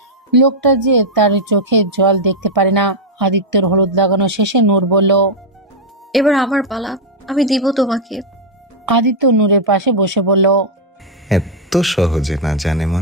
লোকটা যে তার চোখে জল দেখতে পারে না। আদিত্যের হলুদ লাগানো শেষে নূর বলল, এবার আমার পালা, আমি দিব তোমাকে। আদিত্য নূরের পাশে বসে বলল, এত সহজে না জানে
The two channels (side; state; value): both; normal; correlation -0.02